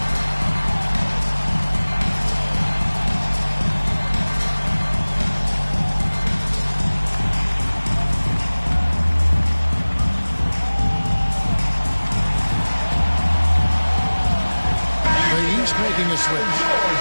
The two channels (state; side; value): inverted; both; correlation -1.00